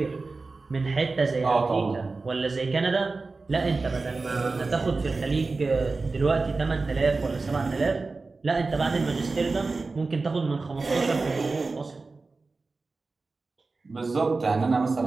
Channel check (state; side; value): quieter; left; 3.8 dB